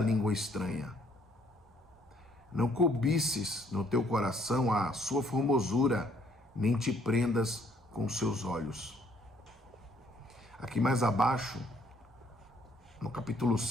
estranha. Não cobices no teu coração a sua formosura, nem te prendas com seus olhos. Aqui mais abaixo, no capítulo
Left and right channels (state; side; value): normal; both; correlation 0.65